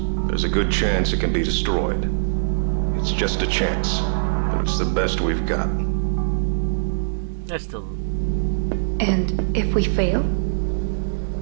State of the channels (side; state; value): left; silent; 64 dB below the other